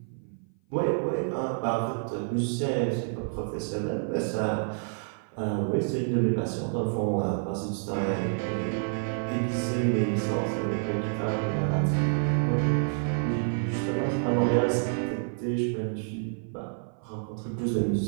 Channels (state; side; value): silent; left; 56 dB below the other